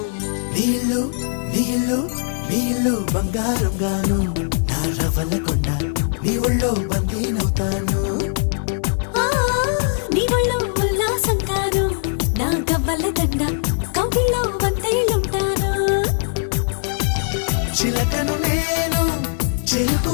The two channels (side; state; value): right; silent; digital silence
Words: నీళ్ళు నీళ్ళు నీళ్ళు బంగారం గాను నా రవల కొండ నీ ఒళ్ళో బందీనవుతాను నీ ఒళ్ళో ఉల్లాసం కాను నా గవ్వల దండ కౌగిల్లో వంతైలుంటాను చిలకను నేను